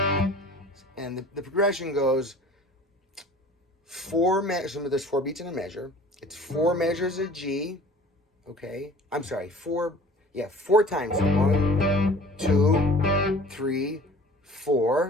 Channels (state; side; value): normal; both; correlation 0.46